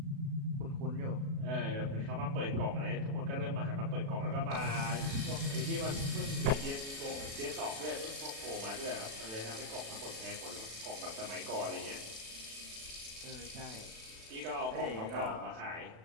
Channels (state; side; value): late; left; 36 ms